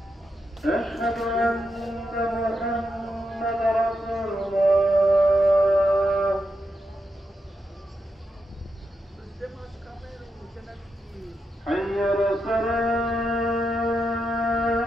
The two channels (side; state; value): both; normal; correlation 0.85